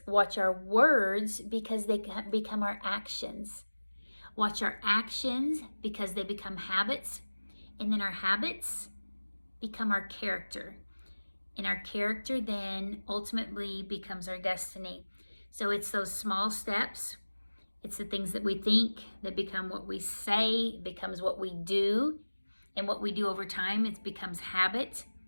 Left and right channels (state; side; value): inverted; both; correlation -1.00